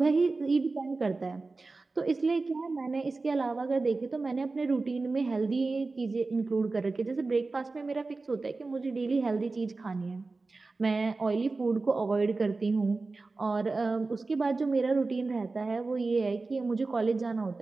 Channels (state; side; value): quieter; left; 3.7 dB